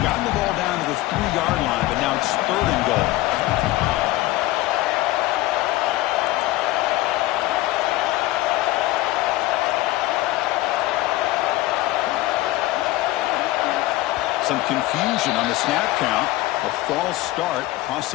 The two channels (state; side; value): quieter; right; 17.4 dB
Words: gotten the ball down to the 3-yard line, but now it's 3rd and goal. Some confusion on the snap count. A false start cost